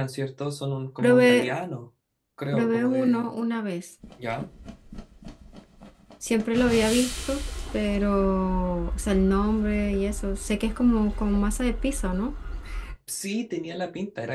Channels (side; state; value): both; identical; correlation 1.00